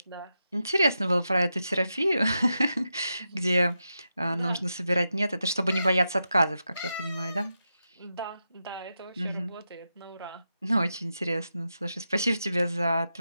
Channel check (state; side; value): inverted; both; correlation -0.88